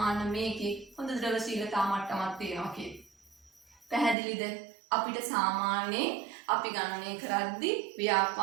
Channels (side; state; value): left; drops out; at 4.2 s